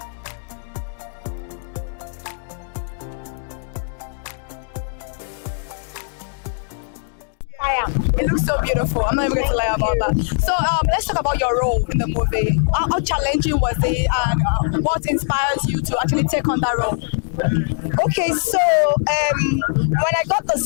It looks so beautiful. I'm not even going to lie about that. So let's talk about your role in the movie. How challenging was it, and what inspires you to actually take on that role? Okay, so when I got the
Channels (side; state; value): right; silent; digital silence